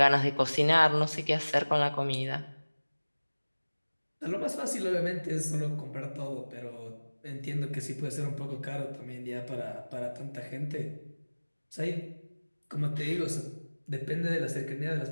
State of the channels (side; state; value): both; inverted; correlation -1.00